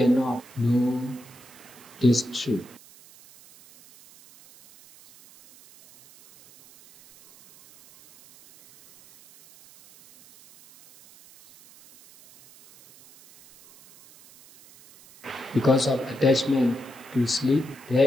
know this truth. Because of attachment to sleep,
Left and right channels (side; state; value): right; noise; hiss, 24 dB below the sound